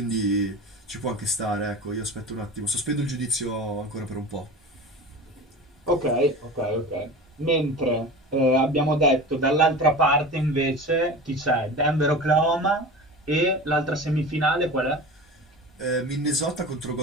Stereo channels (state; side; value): normal; both; correlation 0.33